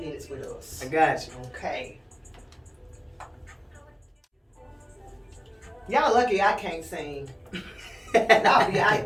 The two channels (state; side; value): identical; both; correlation 1.00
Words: with us. I got you. Okay. Y'all lucky I can't sing. I'll